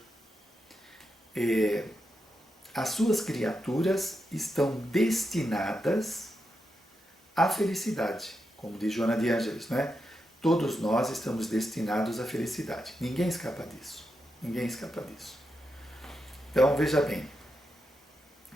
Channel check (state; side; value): normal; both; correlation 0.86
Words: as suas criaturas estão destinadas à felicidade, como diz Joana de Ângeles, né? Todos nós estamos destinados à felicidade. Ninguém escapa disso. Ninguém escapa disso. Então, veja bem.